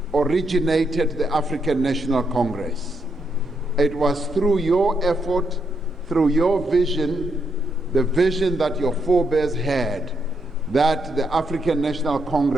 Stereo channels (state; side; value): normal; both; correlation 0.79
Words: originated the African National Congress. It was through your effort, through your vision, the vision that your forebears had, that the African National